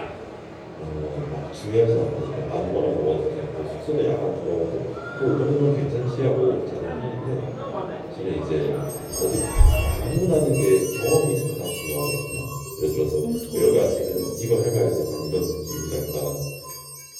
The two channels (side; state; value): both; identical; correlation 1.00